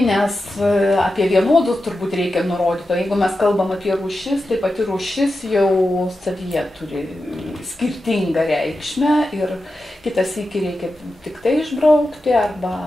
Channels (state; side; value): normal; both; correlation 0.91